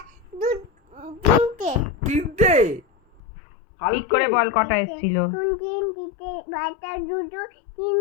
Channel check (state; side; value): drops out; right; at 3.2 s